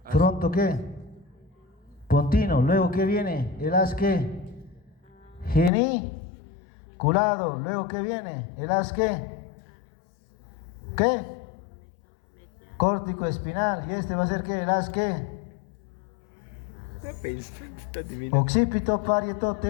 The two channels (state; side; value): drops out; right; at 5.7 s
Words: Fronto ¿qué? Pontino. Luego ¿qué viene? El haz ¿qué? Geniculado. Luego ¿qué viene? El haz ¿qué? ¿Qué? Córtico espinal. ¿Y este va a ser qué? El haz ¿qué? Occipito, parieto,